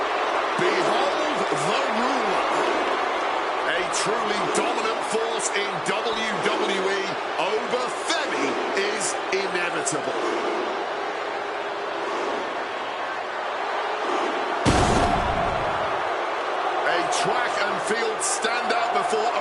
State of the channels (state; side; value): identical; both; correlation 1.00